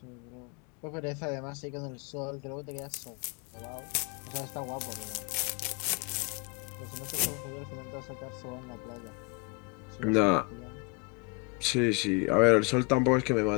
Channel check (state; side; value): quieter; right; 31.0 dB